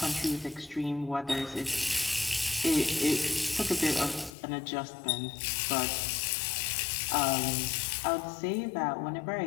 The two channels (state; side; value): drops out; right; at 4.4 s